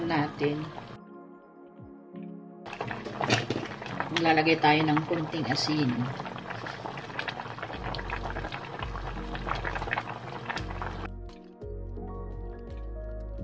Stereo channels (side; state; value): both; identical; correlation 1.00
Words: natin. Maglalagay tayo ng kunting asin.